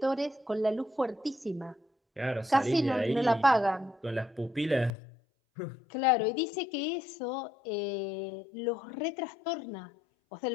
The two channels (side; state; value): right; drops out; at 4.9 s